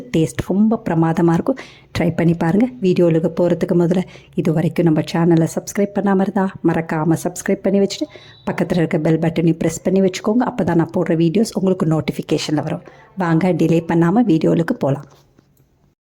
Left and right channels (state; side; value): identical; both; correlation 1.00